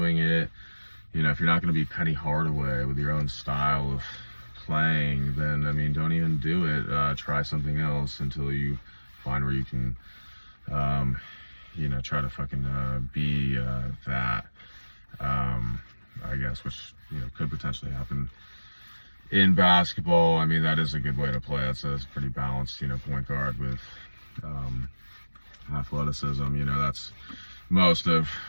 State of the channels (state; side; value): inverted; both; correlation -1.00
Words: it. If you're not going to be Penny Hardaway with your own style of playing, then don't even do it. Try something else until you find where you can. Try to fucking be that, I guess, which could potentially happen in basketball. That is a good way to play. That's pretty balanced, point guard with athleticism. That's most of